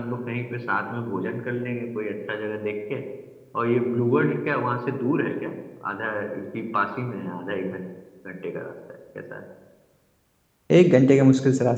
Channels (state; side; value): identical; both; correlation 1.00